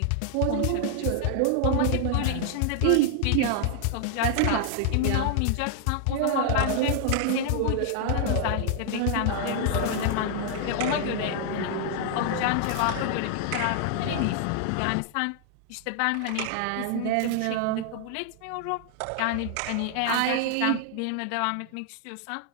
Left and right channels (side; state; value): both; different; correlation 0.00